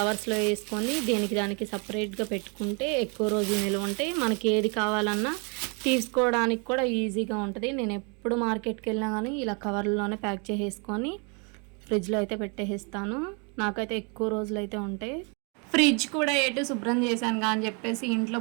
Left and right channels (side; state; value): left; quieter; 34.4 dB